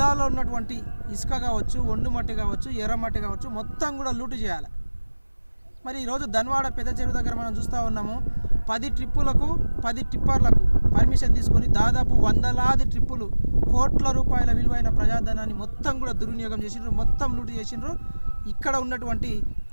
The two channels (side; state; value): both; inverted; correlation -1.00